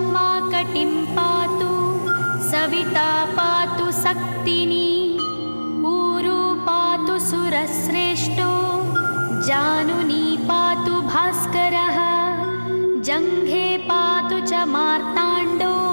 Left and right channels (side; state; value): both; inverted; correlation -1.00